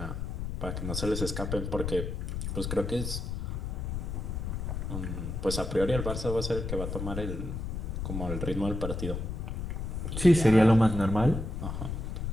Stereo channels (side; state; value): left; noise; rumble, 4 dB below the sound